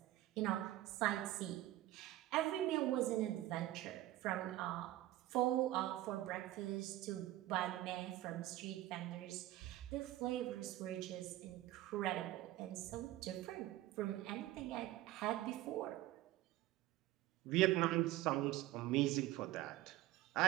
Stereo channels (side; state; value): left; quieter; 15.6 dB